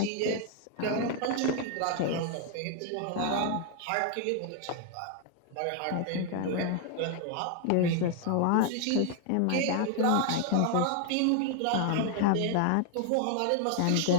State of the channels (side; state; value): both; different; correlation 0.00